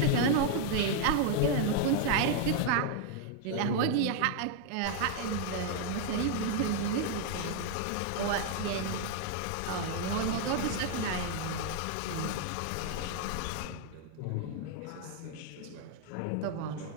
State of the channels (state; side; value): different; both; correlation 0.00